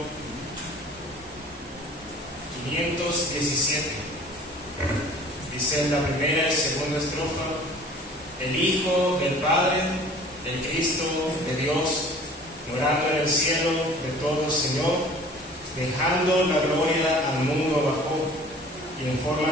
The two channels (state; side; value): normal; both; correlation 0.47